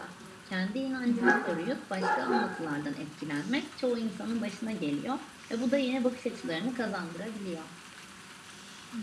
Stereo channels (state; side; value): identical; both; correlation 1.00